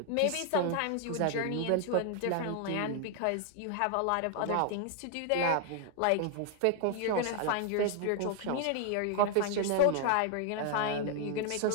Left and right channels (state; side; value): different; both; correlation 0.00